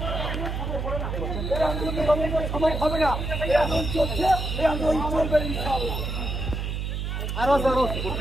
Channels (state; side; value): noise; right; hum, 3 dB below the sound